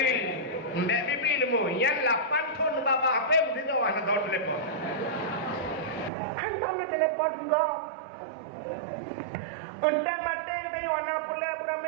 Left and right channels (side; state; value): left; drops out; at 6.1 s